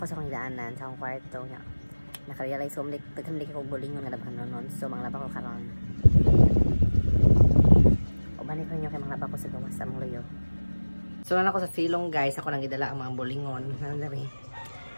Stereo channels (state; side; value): inverted; both; correlation -1.00